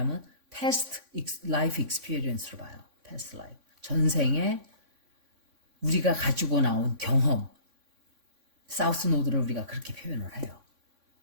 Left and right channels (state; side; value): late; left; 3.6 ms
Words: past life experience로 봐요. past life. 전생에 우리가 가지고 나온 경험. 사우스 노드를 우리가 그렇게 표현을 해요.